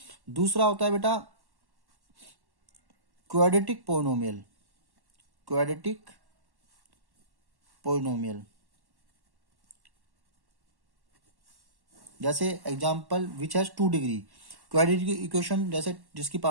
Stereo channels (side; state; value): left; late; 1.1 ms